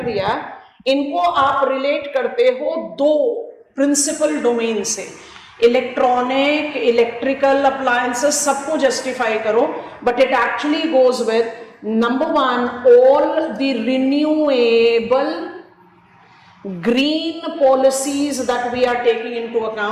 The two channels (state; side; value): identical; both; correlation 1.00